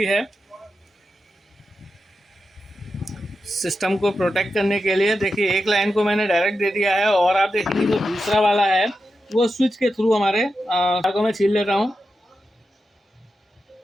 है सिस्टम को प्रोटेक्ट करने के लिए। देखिए एक लाइन को मैंने डायरेक्ट दे दिया है और आप देखेंगे जो दूसरा वाला है वो स्विच के थ्रू हमारे तार को मैं छील लेता हूँ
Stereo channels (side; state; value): both; normal; correlation 0.89